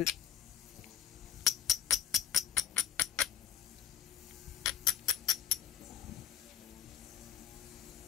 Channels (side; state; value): right; quieter; 9.5 dB